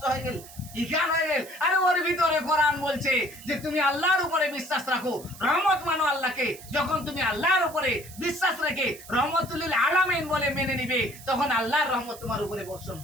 হয়ে গেল, ইখান হয়ে গেল। আরে ওর ভিতরে কোরআন বলছে যে তুমি আল্লাহর উপরে বিশ্বাস রাখো, রহমত মানো আল্লাহকে। যখন তুমি আল্লাহর উপরে বিশ্বাস রেখে রহমতুল আলামিন বলে মেনে নিবে, তখন আল্লাহর রহমত তোমার উপরে বর্ষণ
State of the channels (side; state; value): right; noise; hiss, 17 dB below the sound